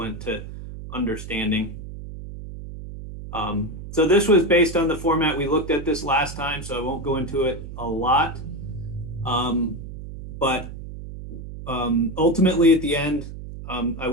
to understanding. So this was based on the format. We looked at this last time, so I won't go into it a lot. But ultimately at the end, I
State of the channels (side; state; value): right; noise; hum, 11 dB below the sound